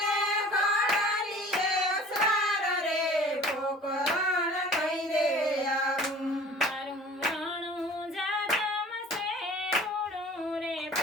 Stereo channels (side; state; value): both; normal; correlation 0.46